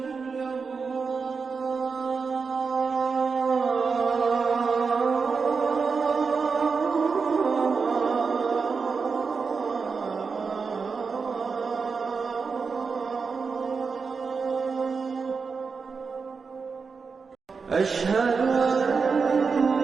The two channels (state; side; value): quieter; left; 5.1 dB